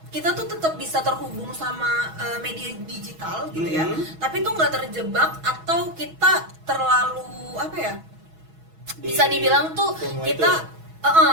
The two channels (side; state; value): left; late; 6.2 ms